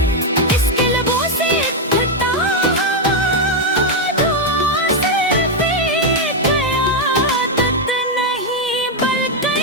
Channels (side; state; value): both; normal; correlation 0.02